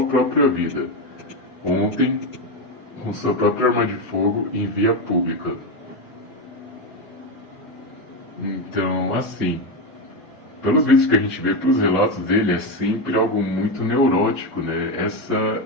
própria vida. Ontem, com sua própria arma de fogo em via pública. Então, assim, pelos vídeos que a gente vê, pelos relatos dele, é sempre algo muito neurótico, né? Essa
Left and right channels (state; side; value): normal; both; correlation 0.12